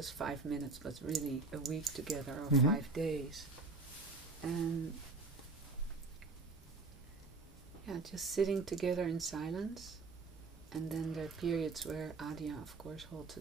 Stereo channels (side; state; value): left; quieter; 3.7 dB